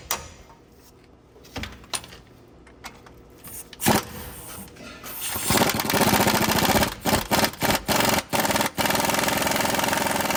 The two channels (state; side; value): identical; both; correlation 1.00